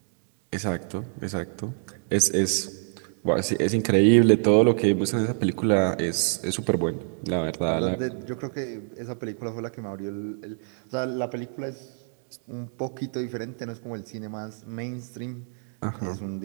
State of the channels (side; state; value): left; silent; 60 dB below the other